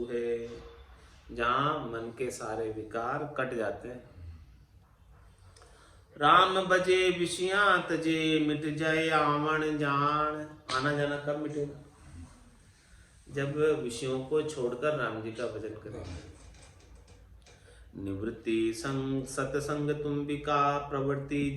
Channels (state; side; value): identical; both; correlation 1.00